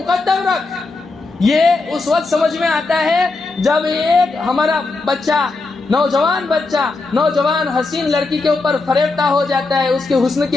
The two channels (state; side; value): quieter; right; 3.6 dB